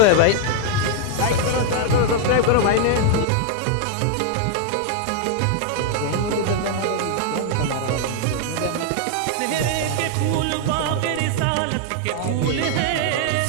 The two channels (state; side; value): different; both; correlation 0.00